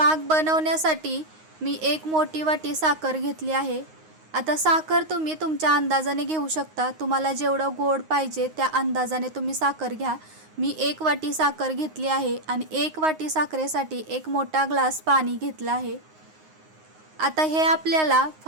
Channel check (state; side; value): late; left; 9.6 ms